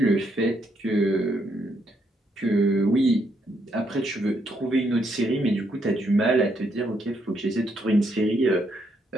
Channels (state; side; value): normal; both; correlation 0.75